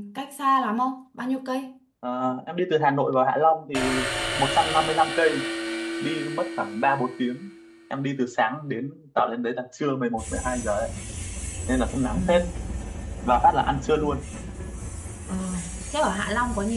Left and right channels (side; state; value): both; identical; correlation 1.00